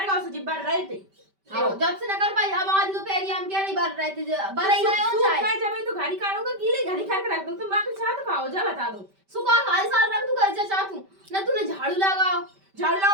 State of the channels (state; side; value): late; left; 5.1 ms